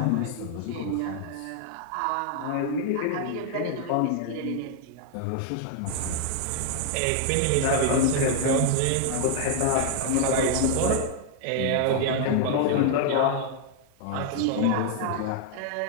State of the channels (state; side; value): different; both; correlation -0.01